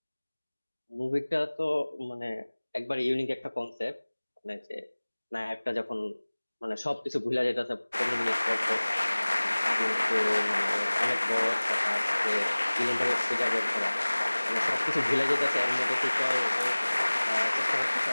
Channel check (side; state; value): both; inverted; correlation -1.00